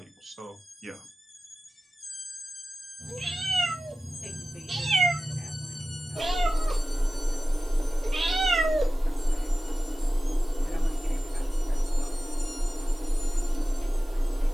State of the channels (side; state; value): both; normal; correlation 0.94